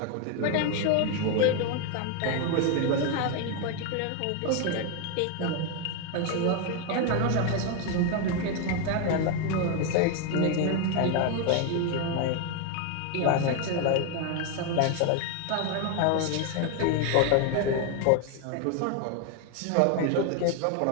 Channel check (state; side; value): different; both; correlation 0.01